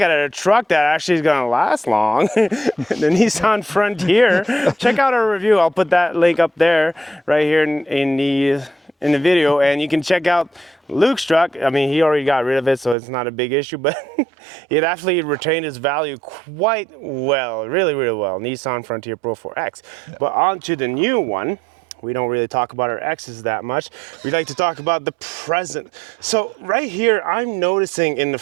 a truck that actually is going to last long, the Nissan Frontier, check out our review. I'll put that link up there right here in the video, and you can check out Luke's truck. I mean, he already got rid of it, so it's not a big issue, but it actually retained its value quite well, really, really well. Nissan Frontier Pro 4X. Yeah. But on to the new one. We don't really talk about our X's that much. We like to talk about the present. So right here, I'm noticing in the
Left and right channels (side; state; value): left; drops out; at 13.0 s